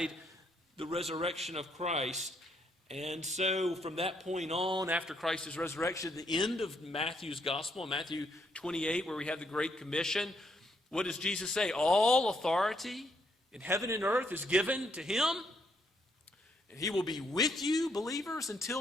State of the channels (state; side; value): normal; both; correlation 0.73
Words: the resurrection of Christ. And so from that point on, after Christ's resurrection, the end of Matthew's gospel, Matthew 28, where we have the Great Commission, what does Jesus say? All authority in heaven and earth is given to him, and he will be with you, believers,